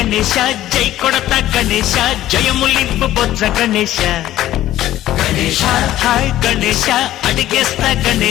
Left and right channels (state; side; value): quieter; right; 13.9 dB